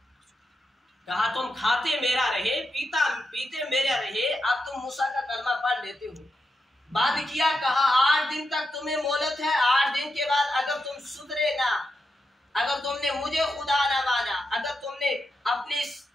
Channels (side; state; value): both; normal; correlation 0.86